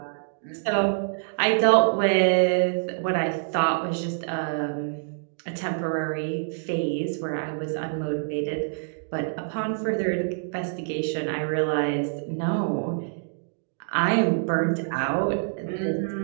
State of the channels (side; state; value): left; silent; digital silence